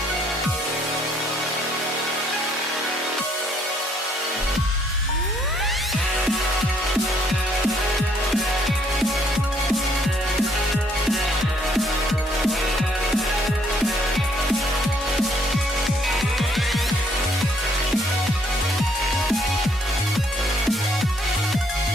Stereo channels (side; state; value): both; normal; correlation 0.67